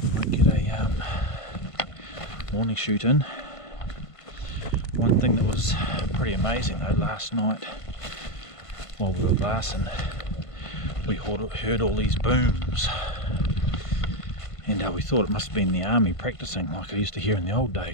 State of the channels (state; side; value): late; right; 1.5 ms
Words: morning shoot in. One thing that was pretty amazing though, last night while we were glassing, we heard all these booms, and we thought it must have been the army practicing like I used to hear in the old